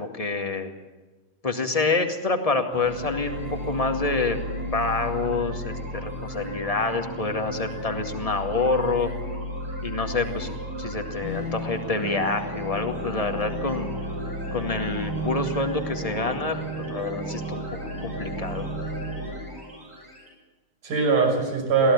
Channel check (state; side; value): late; right; 1.7 ms